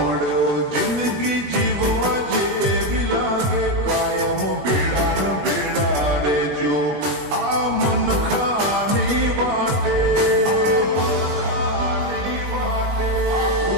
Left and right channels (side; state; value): left; late; 21 ms